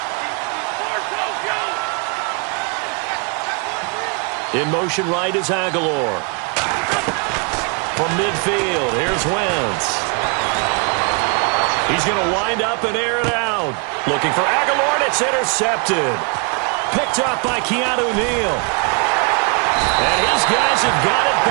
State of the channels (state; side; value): quieter; left; 35.6 dB